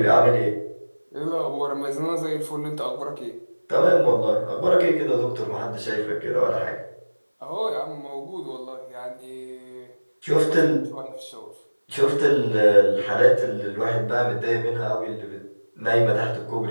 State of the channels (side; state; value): both; inverted; correlation -1.00